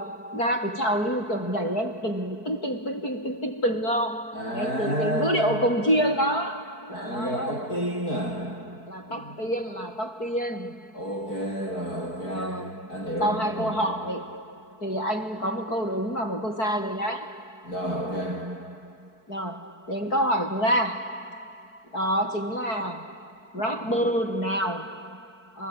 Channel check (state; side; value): late; right; 4.6 ms